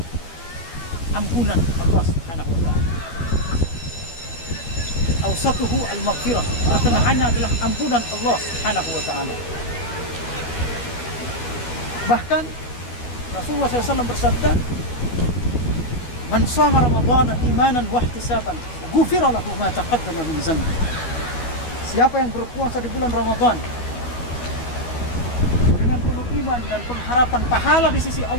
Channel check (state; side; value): late; right; 12 ms